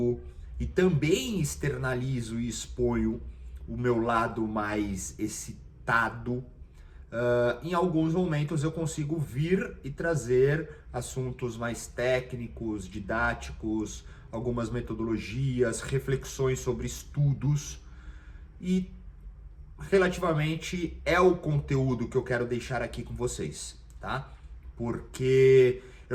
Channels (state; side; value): identical; both; correlation 1.00